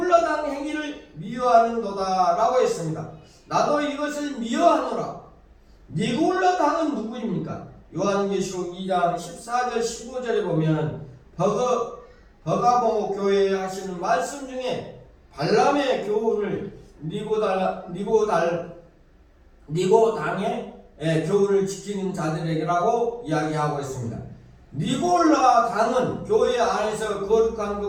행위를 미워하는도다 라고 했습니다. 나도 이것을 미워하노라. 니골라당은 누구입니까? 요한계시록 2장 14절 15절에 보면 버가모 교회에 하시는 말씀 중에 발람의 교훈을 니고당의 교훈을 지키는 자들에게라고 이야기하고 있습니다. 니골라 당은 교회 안에서 거룩한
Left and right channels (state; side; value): identical; both; correlation 1.00